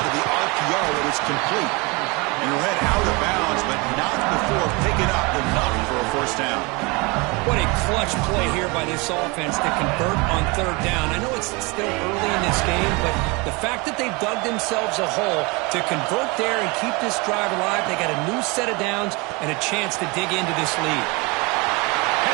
of the RPO, and it's complete. And he'll head out of bounds, but not before picking up enough for a first down. What a clutch play here by this offense to convert on 3rd down. I know it's still early in this game, but the fact that they've dug themselves a hole to convert there and keep this drive alive, they got a new set of downs and a chance to dig into this lead.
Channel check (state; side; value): quieter; left; 27.2 dB